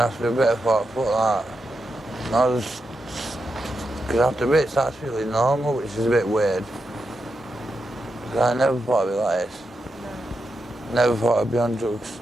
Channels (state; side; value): normal; both; correlation 0.86